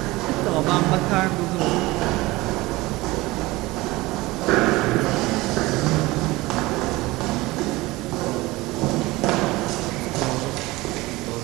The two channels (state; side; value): quieter; left; 20.5 dB